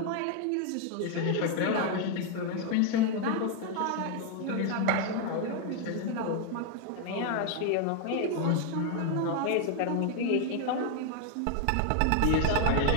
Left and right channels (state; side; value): different; both; correlation 0.01